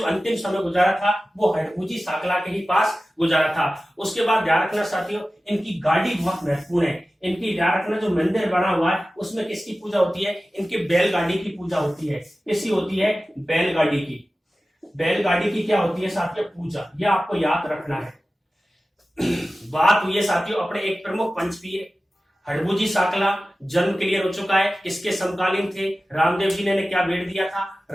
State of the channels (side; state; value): both; normal; correlation 0.96